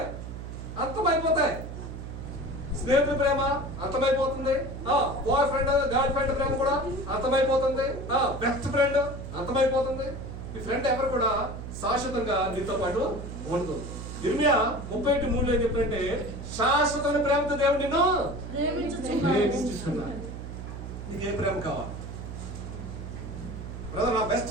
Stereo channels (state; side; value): noise; right; hum, 9 dB below the sound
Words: అంతమైపోతాయి. స్నేహితుల ప్రేమ అంతమైపోతుంది, బాయ్ ఫ్రెండ్ గర్ల్ ఫ్రెండ్ ప్రేమ కూడా అంతమైపోతుంది, బెస్ట్ ఫ్రెండ్ అంతమైపోతుంది. ఈ ఫ్రెండ్ ఎవరు కూడా శాశ్వతంగా నీతో పాటు ఉండదు. ఇర్మియా 31:3 ఏం చెప్పారంటే, శాశ్వతమైన ప్రేమతో దేవుడు నిన్ను ప్రేమించుచున్నాడు. నీకు ఏ ప్రేమ కావాలి? బ్రదర్, నా బెస్ట్